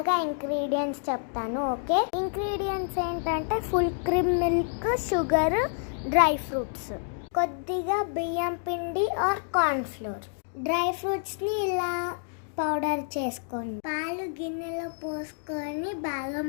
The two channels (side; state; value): right; silent; digital silence